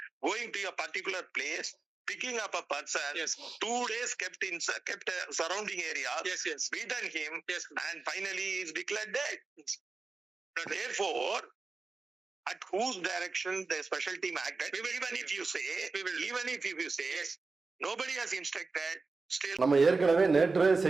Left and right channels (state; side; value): quieter; left; 4.0 dB